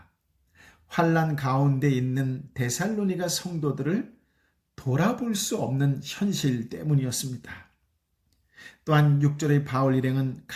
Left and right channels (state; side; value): identical; both; correlation 1.00